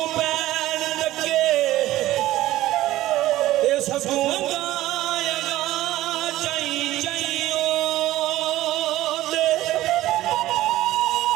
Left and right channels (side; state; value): left; quieter; 15.5 dB